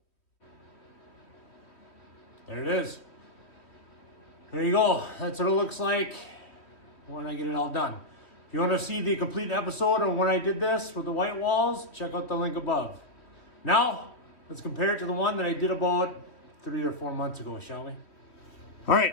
There it is. There you go. That's what it looks like when I get it all done. If you want to see the complete episode of when I did this with the white walls, check out the link above. Now, let's compare it to the one that I did about 3 or 4 months ago, shall we? All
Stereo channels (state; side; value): late; right; 3.1 ms